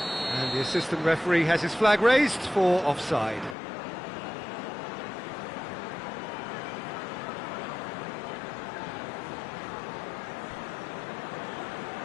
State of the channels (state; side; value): drops out; right; at 3.6 s